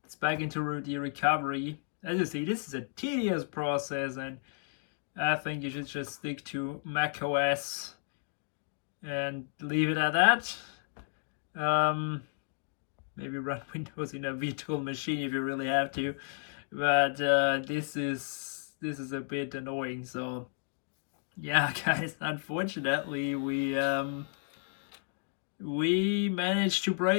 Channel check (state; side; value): silent; right; digital silence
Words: it's back into the recovery. As you see, this is a tedious process, and I think you should just stick to Mac OS and leave it at that. Maybe run Windows in a virtual machine if you really have to, but this is a bit annoying. So yeah, guys, unfortunately we managed to